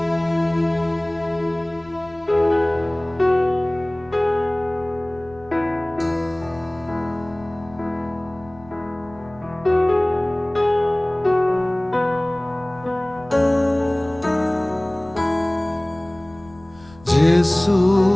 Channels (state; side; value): noise; left; rumble, 24 dB below the sound